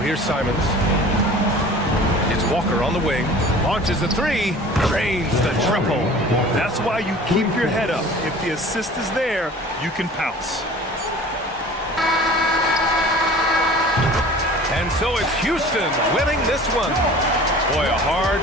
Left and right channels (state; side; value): normal; both; correlation 0.44